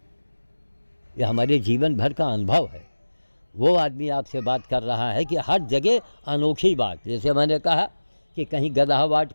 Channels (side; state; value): both; inverted; correlation -1.00